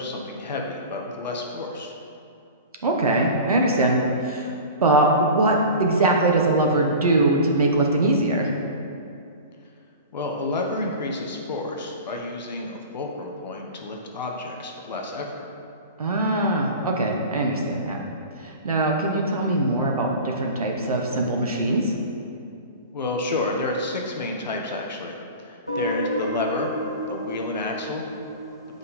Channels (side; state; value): both; inverted; correlation -0.35